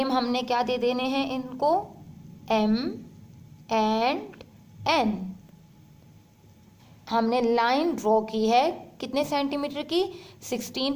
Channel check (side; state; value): both; identical; correlation 1.00